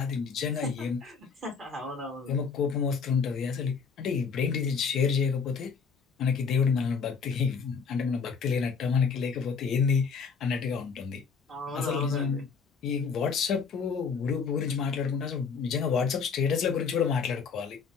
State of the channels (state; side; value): quieter; right; 5.6 dB